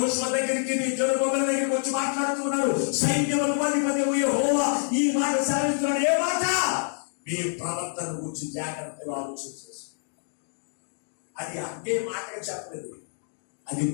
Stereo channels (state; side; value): silent; right; digital silence